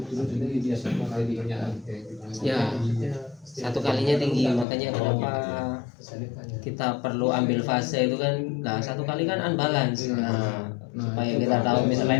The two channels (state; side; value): drops out; right; at 4.7 s